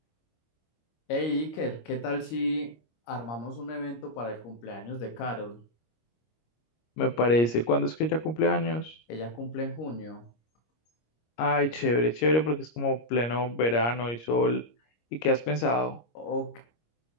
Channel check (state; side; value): late; right; 26 ms